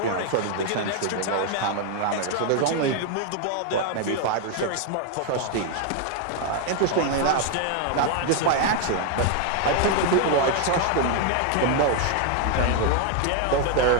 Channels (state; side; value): different; both; correlation 0.01